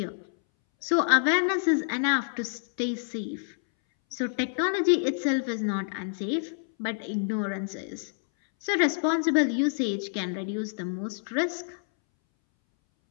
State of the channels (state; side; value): silent; right; 60 dB below the other